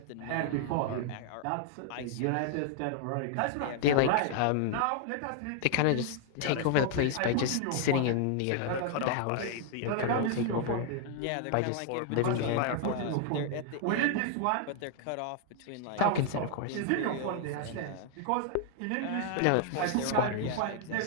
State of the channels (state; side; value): different; both; correlation 0.00